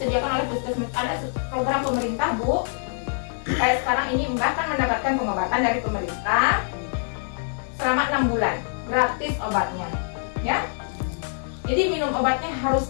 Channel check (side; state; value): right; silent; digital silence